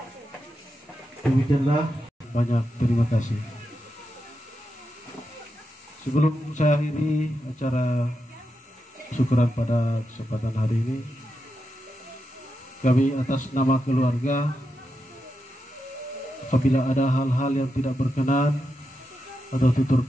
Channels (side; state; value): both; normal; correlation 0.87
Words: Demikianlah, banyak terima kasih. Sebelum saya akhiri acara syukuran pada kesempatan hari ini, kami atas nama keluarga, apabila ada hal-hal yang tidak berkenan atau tutur